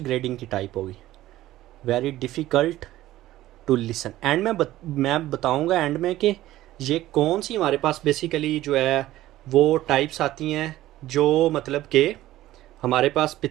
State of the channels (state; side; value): quieter; left; 15.1 dB